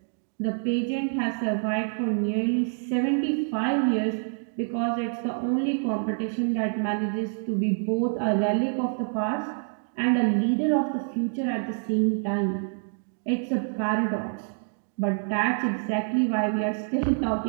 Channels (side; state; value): left; silent; 60 dB below the other